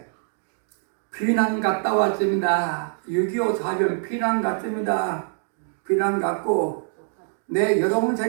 피난 갔다 왔습니다. 6.25 사변 피난 갔습니다. 피난 갔고 내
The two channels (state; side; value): silent; left; digital silence